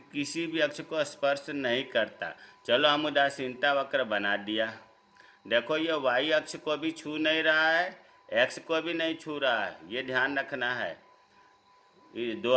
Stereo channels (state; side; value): identical; both; correlation 1.00